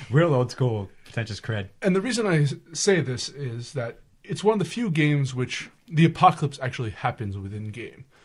Real old school, pretentious cred. And the reason I say this is that it's one of the few games which the apocalypse actually happens within game.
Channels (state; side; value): identical; both; correlation 1.00